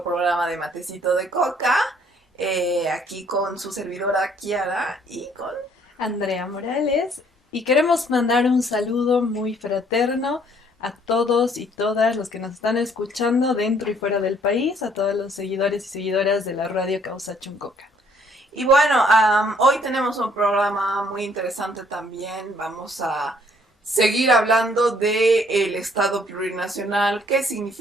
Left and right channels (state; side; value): normal; both; correlation 0.63